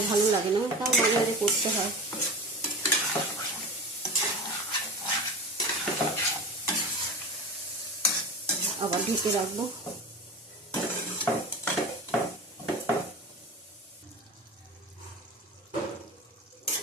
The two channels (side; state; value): both; normal; correlation 0.31